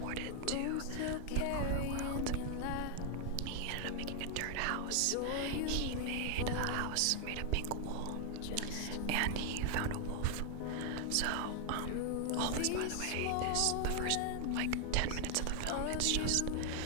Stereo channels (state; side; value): different; both; correlation 0.00